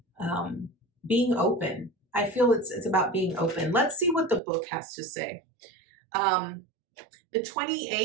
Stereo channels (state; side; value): drops out; left; at 4.4 s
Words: being open. I feel it's about being open. Let's see what the book has to say. The